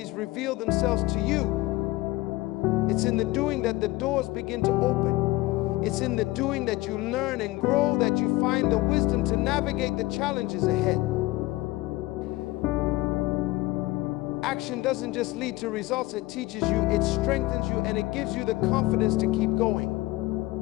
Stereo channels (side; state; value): right; quieter; 19.4 dB